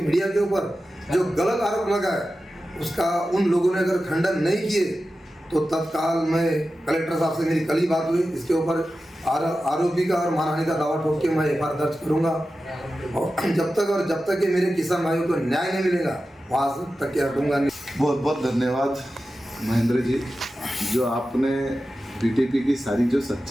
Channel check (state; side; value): normal; both; correlation 0.93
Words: मीडिया के ऊपर जो गलत आरोप लगा है, उसका उन लोगों ने अगर खंडन नहीं किए तो तत्काल मैं कलेक्टर साहब से मेरी कल ही बात हुई, इसके ऊपर आरोपी का और मानहानि का दावा ठोक के मैं एफआईआर दर्ज करूंगा। और जब तक कि मेरे किसान भाइयों को न्याय नहीं मिलेगा वहाँ तक के हटूंगा नहीं। बहुत बहुत धन्यवाद महेंद्र जी, जो आपने बीटीपी की सारी जो